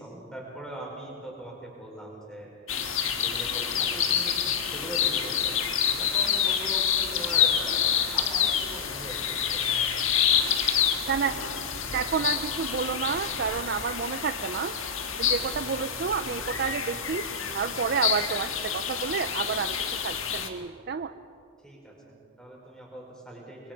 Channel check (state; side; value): quieter; right; 3.7 dB